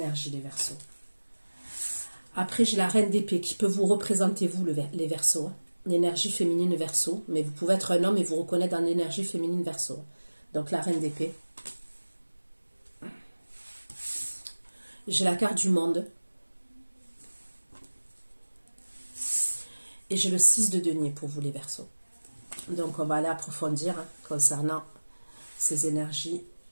les Verseaux. Après, j'ai la reine d'épée qui peut vous représenter, vous, les Verseaux. L'énergie féminine Verseau. Mais vous pouvez être un homme et vous reconnaître dans l'énergie féminine Verseau. Donc, la reine d'épée. J'ai la carte du monde. Et j'ai le 6 de denier pour vous, les Verseaux. Donc, on va aller approfondir concernant ces énergies.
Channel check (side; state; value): both; inverted; correlation -1.00